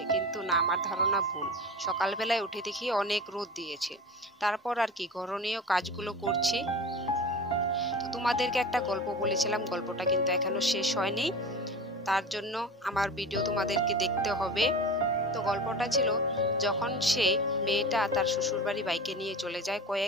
কিন্তু না, আমার ধারণা ভুল। সকালবেলায় উঠে দেখি অনেক রোদ দিয়েছে। তারপর আর কি করণীয় কাজগুলো করছি। তো তোমাদেরকে একটা গল্প বলেছিলাম, গল্পটা কিন্তু এখনো শেষ হয়নি। তার জন্য আমার ভিডিও তোমাদেরকে দেখতে হবে। তো গল্পটা ছিল, যখন সে মেয়েটা তার শ্বশুরবাড়ি বাইকে নিয়ে চলে যায়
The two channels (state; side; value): normal; both; correlation 0.32